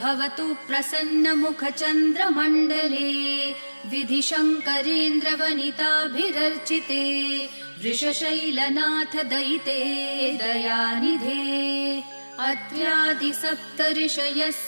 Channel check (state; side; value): inverted; both; correlation -1.00